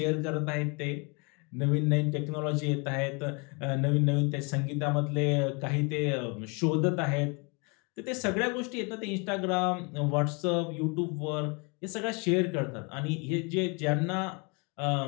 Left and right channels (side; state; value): right; quieter; 31.6 dB